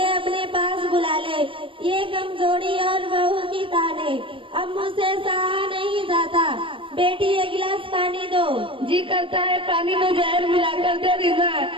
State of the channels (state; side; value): late; left; 0.25 ms